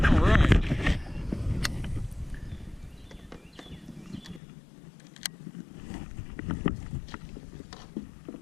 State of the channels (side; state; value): right; drops out; at 4.4 s